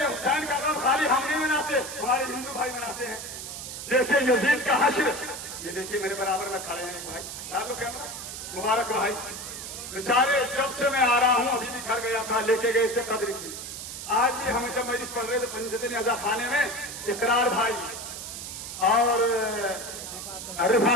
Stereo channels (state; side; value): noise; right; hiss, 8 dB below the sound